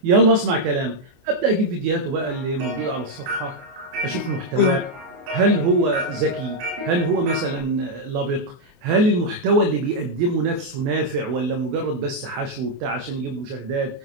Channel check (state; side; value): late; left; 24 ms